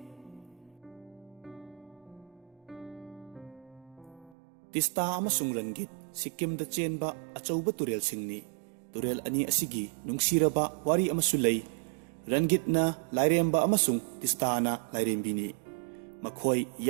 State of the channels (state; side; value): drops out; left; at 4.4 s